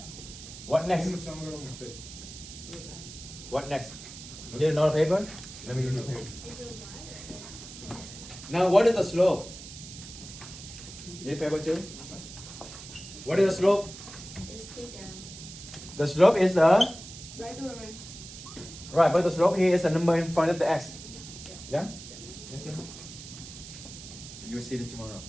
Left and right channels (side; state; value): right; noise; hiss, 14 dB below the sound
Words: What next? Space. What next? You need another paper? Let me give you a paper. Now, what is the slope? Need paper too? What is the slope? It's 2 down. The slope is the Right over right. right, but the slope here is a number in front of the x. Yeah? Yes, sir. You will see it tomorrow.